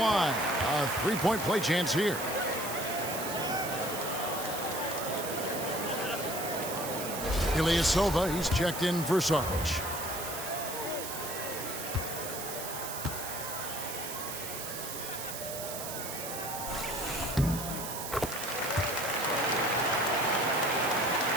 A 3-point play chance here. Ilyasova, he's checked in for Sarge.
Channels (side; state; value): right; noise; hiss, 7 dB below the sound